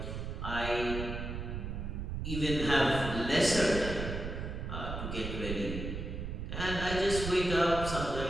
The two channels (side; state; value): right; noise; rumble, 5 dB below the sound